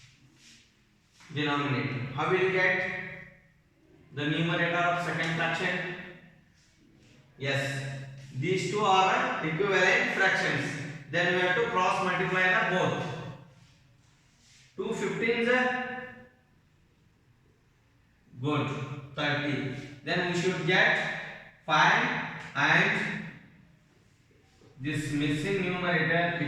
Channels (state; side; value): identical; both; correlation 1.00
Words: Denominator. How will you get the numerator of second fraction? Yes, these two are equivalent fractions. Then we have to cross multiply the both. 2 15s are good, 30. Then we should get 5 and this missing numerator,